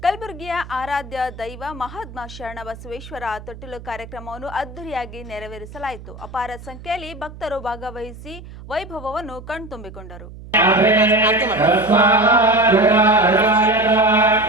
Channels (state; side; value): noise; right; hum, 15 dB below the sound